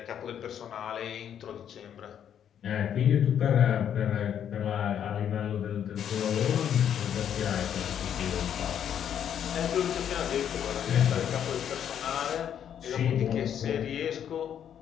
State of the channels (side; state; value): right; quieter; 9.2 dB